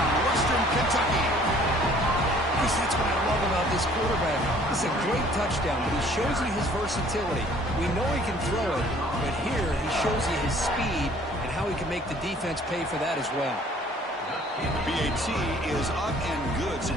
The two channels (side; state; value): both; normal; correlation 0.55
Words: Western Kentucky. Chris, that's what I love about this quarterback. It's a great touchdown, but he shows you his versatility. We know he can throw it, but here he shows you his speed and how he can make the defense pay for that as well. BAT is up and good, so